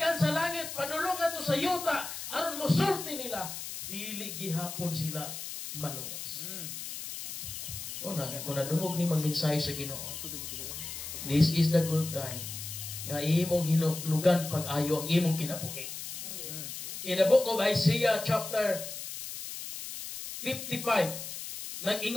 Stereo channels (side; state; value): left; noise; hiss, 8 dB below the sound